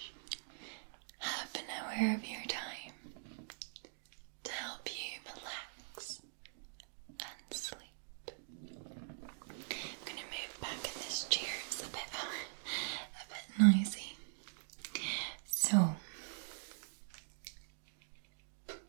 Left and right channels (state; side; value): silent; left; digital silence